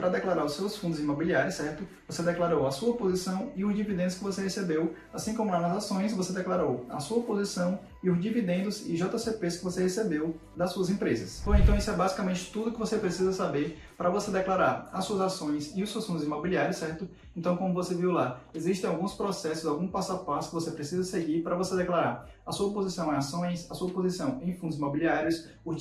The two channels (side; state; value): both; identical; correlation 1.00